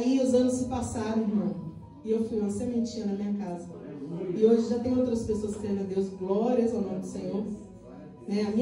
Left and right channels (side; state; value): both; identical; correlation 1.00